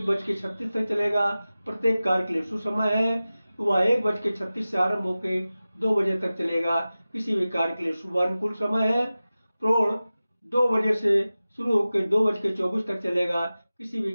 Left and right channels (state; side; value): inverted; both; correlation -0.96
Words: तक चलेगा, प्रत्येक कार्य के लिए शुभ समय है। वह 1:36 से आरंभ होकर 2 बजे तक चलेगा, किसी भी कार्य के लिए शुभ अनुकूल समय है। प्रौढ़ 2 बजे से शुरू होकर 2:24 तक चलेगा, किसी भी